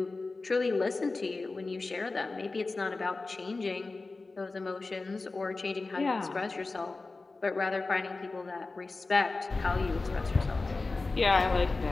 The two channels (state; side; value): quieter; right; 3.6 dB